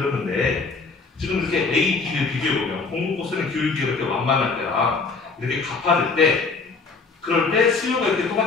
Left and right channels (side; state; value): right; quieter; 4.3 dB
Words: 지금 이렇게 A, B를 비교해보면 공급 곡선의 기울기가 이렇게 완만할 때랑 이렇게 가파를 때 그럴 때 수요가 이렇게